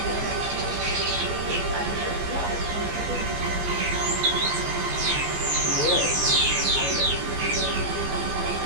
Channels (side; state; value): left; late; 14 ms